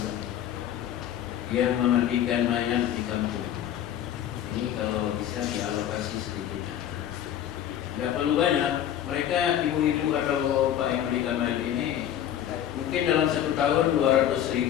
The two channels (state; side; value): quieter; right; 10.7 dB